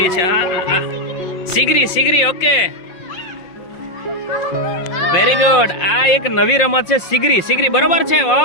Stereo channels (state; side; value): late; right; 5.5 ms